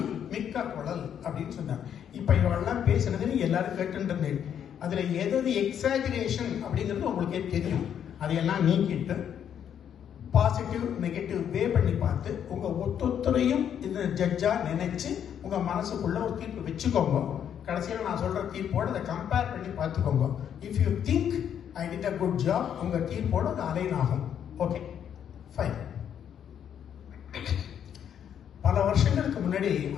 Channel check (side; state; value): right; quieter; 9.0 dB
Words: மிக்க குழல் அப்படின்னு சொன்னார். இப்ப இவெல்லாம் பேசுனது எல்லாரும் கேட்டுருந்தேன். அதுல எது எக்ஸாஜரேஷன் அப்படிங்கிறது உங்களுக்கே தெரியும். அதையெல்லாம் நீக்கிட்டு பாசிட்டிவ் நெகட்டிவ் வே பண்ணி பார்த்து உங்க ஒத்தொத்தரையும் இந்த ஜட்ஜா நினைச்சு உங்க மனசுக்குள்ள ஒரு தீர்ப்பு வச்சுக்கோங்க. கடைசியில் நான் சொல்ற தீர்ப்போட அதை கம்பேர் பண்ணி பார்த்துக்கோங்க. If you think I did a good job, உங்க தீர்ப்போட அது அலைன் ஆகும். Okay fine. பல வருஷங்களுக்கு முன்னாடி